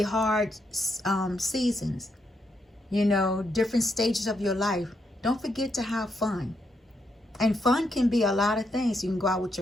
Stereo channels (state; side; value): normal; both; correlation 0.79